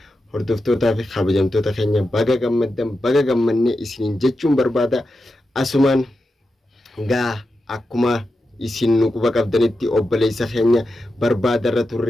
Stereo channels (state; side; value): normal; both; correlation 0.89